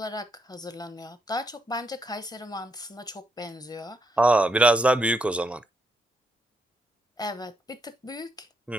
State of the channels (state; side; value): normal; both; correlation 0.78